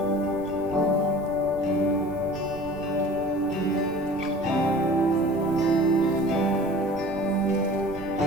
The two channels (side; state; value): right; noise; rumble, 16 dB below the sound